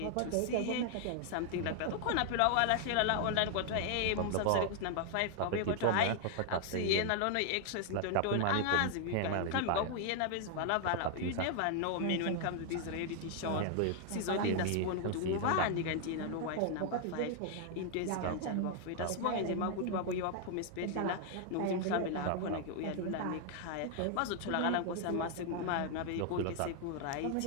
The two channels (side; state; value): both; different; correlation 0.00